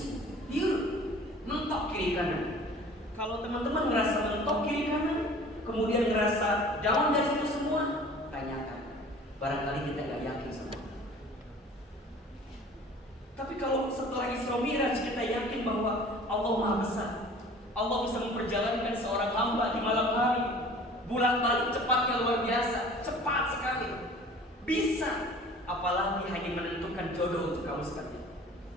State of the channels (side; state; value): both; normal; correlation 0.47